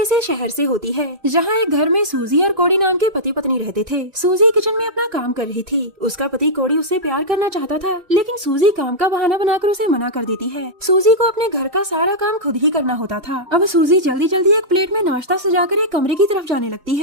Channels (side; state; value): left; late; 2.3 ms